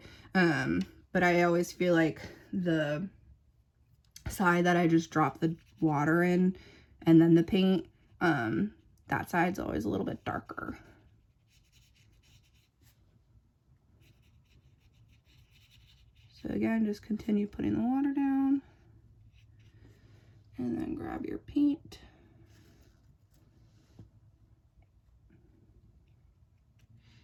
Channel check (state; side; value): identical; both; correlation 1.00